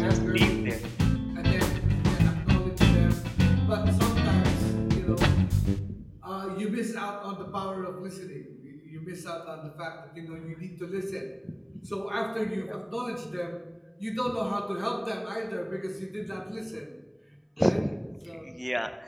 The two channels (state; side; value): identical; both; correlation 1.00